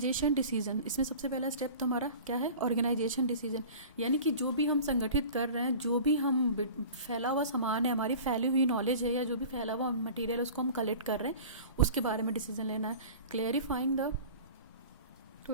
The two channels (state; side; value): inverted; both; correlation -0.40